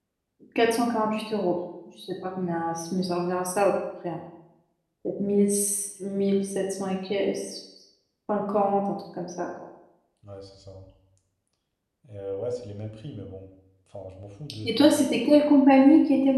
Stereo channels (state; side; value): identical; both; correlation 1.00